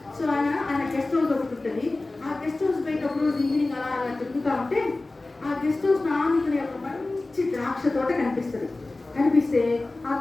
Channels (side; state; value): right; quieter; 3.1 dB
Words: సో ఆయన గెస్ట్ హౌస్ ఒకటి ఉంటుంది. ఆ గెస్ట్ హౌస్ బయట ఒక రోజు ఈవినింగ్ అలా తిరుగుతూ ఉంటే ఆ గెస్ట్ హౌస్ నానుకునే ఒక మంచి ద్రాక్ష తోట కనిపిస్తుంది. కనిపిస్తే ఆ